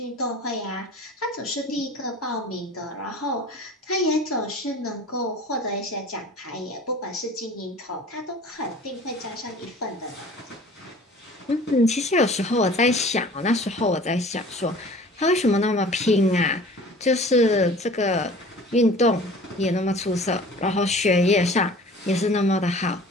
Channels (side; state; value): both; normal; correlation 0.45